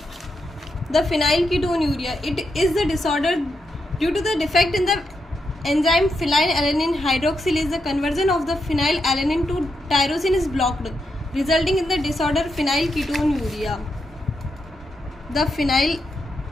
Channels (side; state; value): both; normal; correlation 0.83